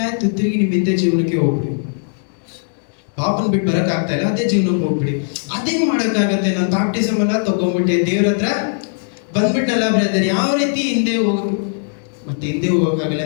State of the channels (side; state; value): right; silent; digital silence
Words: ಆಯ್ತು, ತಿರುಗಿ ನಿಮ್ಮ ಹಿಂದೆ ಜೀವನಕ್ಕೆ ಹೋಗ್ಬಿಡಿ. ಪಾಪನ್ ಬಿಟ್ಟು ಬರಕ್ ಆಗ್ತಾ ಇಲ್ಲ, ಅದೇ ಜೀವನಕ್ಕೆ ಹೋಗ್ಬಿಡಿ. ಅದೇ ಮಾಡಕ್ಕಾಗತ್ತೆ? ನಾನು ಬ್ಯಾಪ್ಟಿಸಮ್ ಎಲ್ಲ ತಗೊಂಡ್ಬಿಟ್ಟೆ, ದೇವ್ರ ಹತ್ರ ಬಂದ್ಬಿಟ್ನಲ್ಲ ಬ್ರದರ್, ಯಾವ ರೀತಿ ಹಿಂದೆ ಹೋಗಕ್ಕೆ? ಮತ್ತೆ ಹಿಂದೆ ಹೋಗಕ್ಕಾಗಲ್ಲ